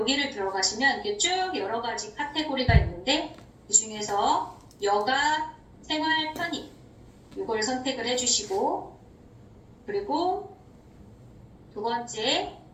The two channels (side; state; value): both; identical; correlation 1.00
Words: 들어가시면 이게 쭉 여러 가지 카테고리가 있는데 그 중에서 여가 생활 편의 이걸 선택을 해주시고 그리고 두 번째